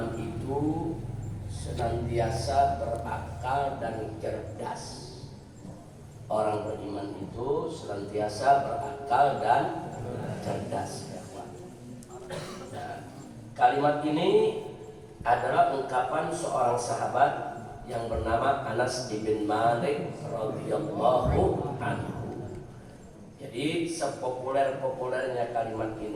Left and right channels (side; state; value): both; identical; correlation 1.00